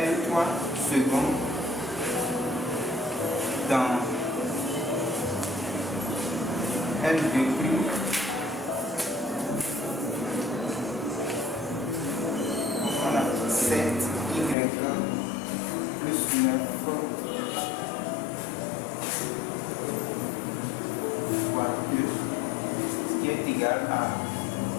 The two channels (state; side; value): drops out; right; at 14.6 s